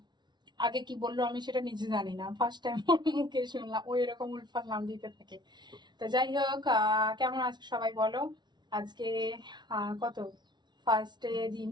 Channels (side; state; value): left; late; 0.21 ms